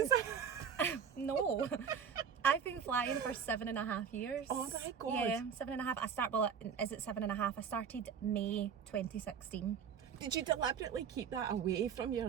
No. I've been flying for 7.5 years. Oh my God. Yeah, 7.5. Is it 7.5? I started May 2016. Did you deliberately keep that away from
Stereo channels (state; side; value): quieter; left; 7.3 dB